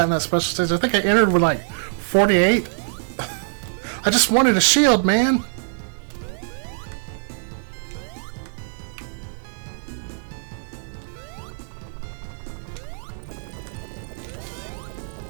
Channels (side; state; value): left; silent; digital silence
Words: in that special stage. I think I entered with like 48. I just wanted a shield, man.